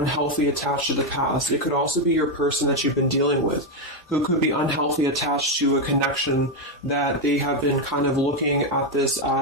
attached to the past. It could also be your person that you've been dealing with, who could be unhealthy attached to a connection that they have been kind of looking at this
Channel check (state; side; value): normal; both; correlation 0.05